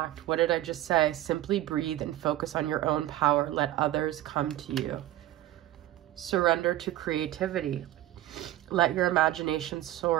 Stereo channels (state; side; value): quieter; left; 14.5 dB